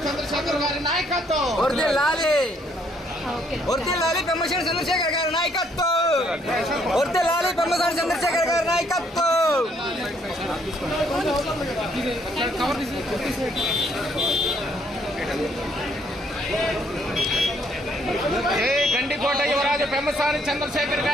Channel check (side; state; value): both; normal; correlation 0.68